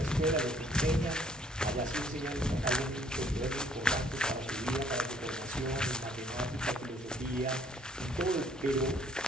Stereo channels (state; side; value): normal; both; correlation 0.62